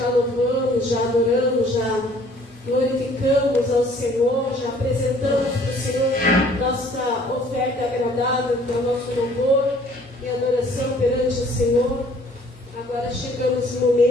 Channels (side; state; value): both; normal; correlation 0.57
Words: louvamos, já adoramos, já glorificamos ao Senhor, já apresentamos para o Senhor nossa oferta agradável, para o nosso louvor e adoração perante o Senhor. Agora chegamos no